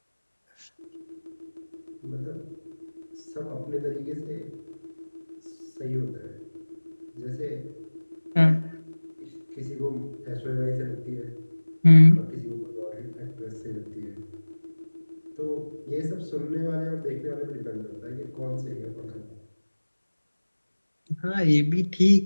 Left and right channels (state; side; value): inverted; both; correlation -1.00